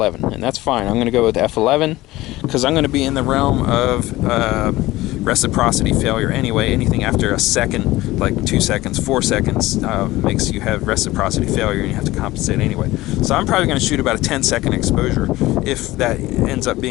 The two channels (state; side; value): quieter; right; 18.0 dB